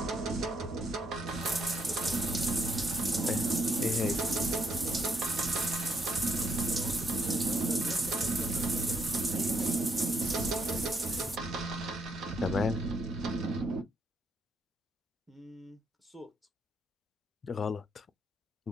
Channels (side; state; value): both; normal; correlation 0.75